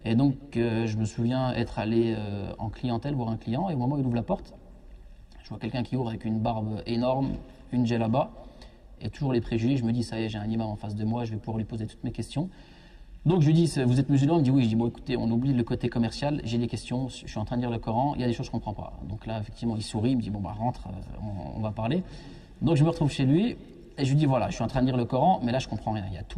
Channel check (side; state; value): both; identical; correlation 1.00